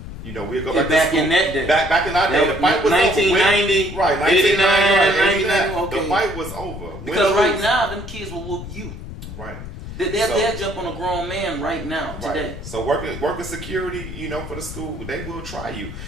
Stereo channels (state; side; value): noise; left; rumble, 11 dB below the sound